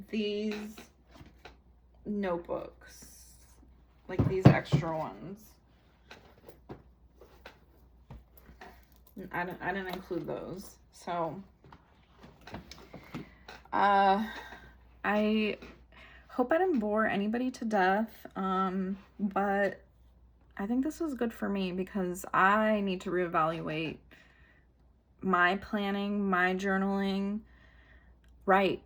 these notebooks, like these extra ones. I didn't include those. So I hope I didn't bore anybody to death, but I think this was good for me because I need to reevaluate my planning, my journaling.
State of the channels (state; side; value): identical; both; correlation 1.00